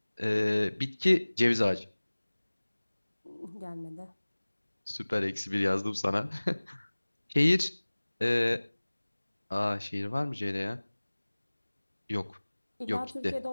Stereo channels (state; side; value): inverted; both; correlation -1.00